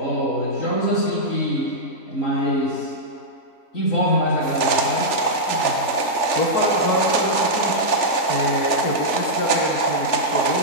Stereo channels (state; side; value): late; right; 3.4 ms